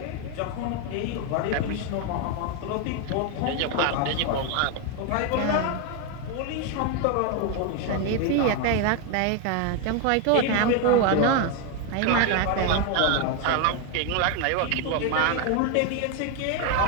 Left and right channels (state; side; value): different; both; correlation 0.01